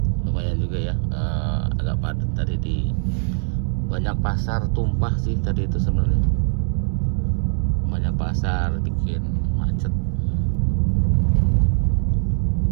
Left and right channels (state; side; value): silent; left; digital silence